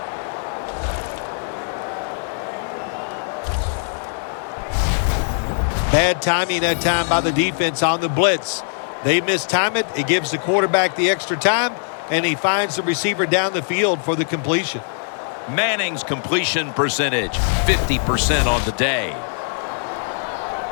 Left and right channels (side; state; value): right; silent; 62 dB below the other